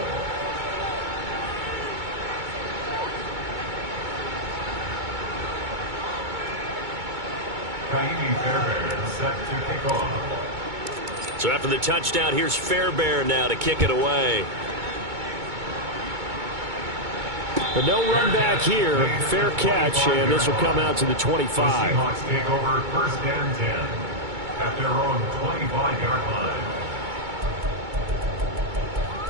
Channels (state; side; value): late; left; 2.2 ms